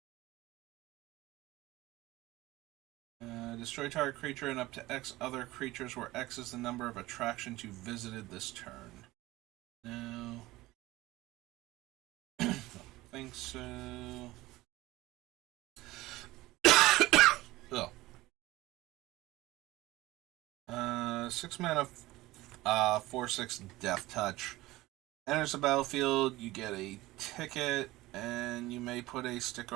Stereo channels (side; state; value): left; quieter; 18.5 dB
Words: Destroy target creature and up to X other creatures, where X is the number of attractions you visited this turn. No. Don't think so. Oh. 6 mana, 4/6 Death Touch. Enters the battlefield, you get a ticket, and you may put a sticker